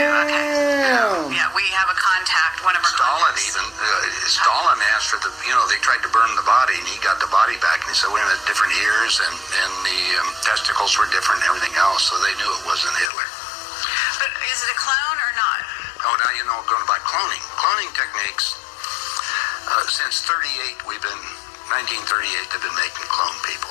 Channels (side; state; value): right; drops out; at 13.1 s